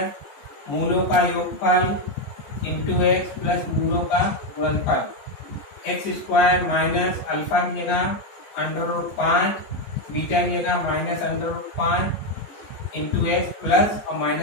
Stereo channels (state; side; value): late; right; 14 ms